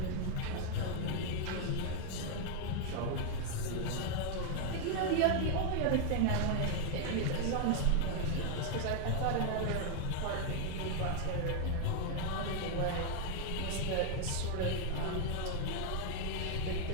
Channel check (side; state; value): both; different; correlation 0.00